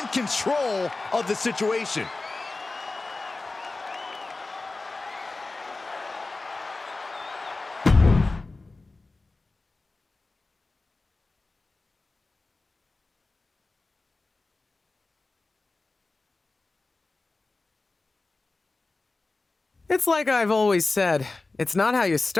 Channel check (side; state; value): right; quieter; 3.4 dB